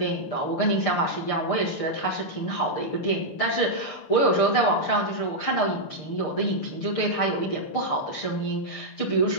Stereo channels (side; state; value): right; late; 6.6 ms